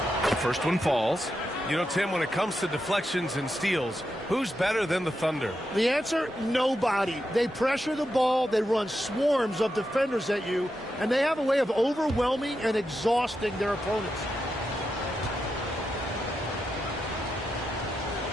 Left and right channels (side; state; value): both; normal; correlation 0.86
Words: First one falls. You know, Tim, when it comes to deflections and steals, who's better than the Thunder? The answer, nobody. They pressure the ball, they run swarms of defenders at you, and they have a way of overwhelming and exhausting their opponents.